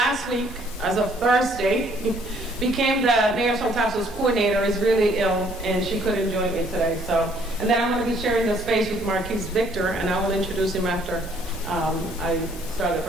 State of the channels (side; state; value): both; normal; correlation 0.63